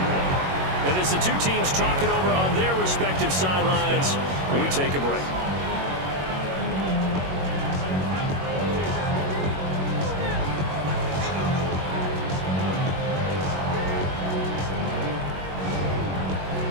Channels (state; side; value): late; left; 21 ms